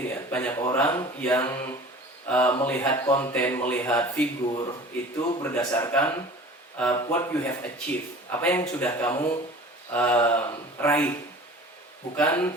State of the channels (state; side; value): normal; both; correlation 0.42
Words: ya, banyak orang yang melihat konten, melihat figur itu berdasarkan what you have achieved, apa yang sudah kamu raih,